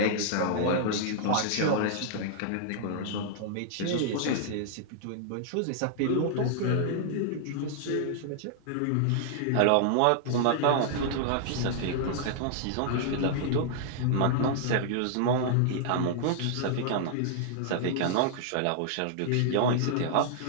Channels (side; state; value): both; different; correlation -0.01